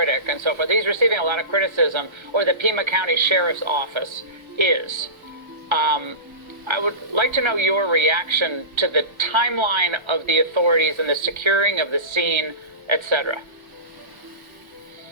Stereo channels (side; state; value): left; late; 1.3 ms